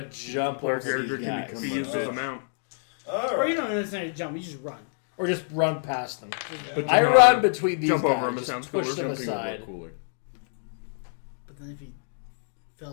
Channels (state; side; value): silent; right; digital silence